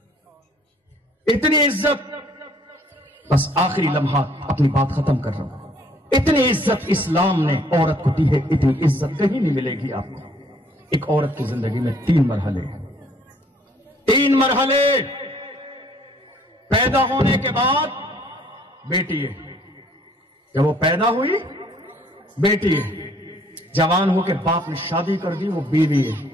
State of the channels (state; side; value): normal; both; correlation 0.61